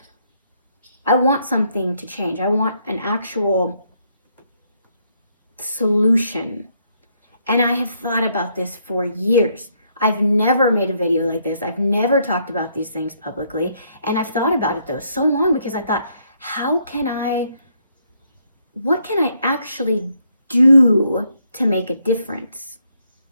I want something to change. I want an actual solution. And I have thought about this for years. I've never made a video like this. I've never talked about these things publicly. And I've thought about it though so long, because I thought, what can I actually do to make a difference?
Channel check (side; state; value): both; inverted; correlation -0.73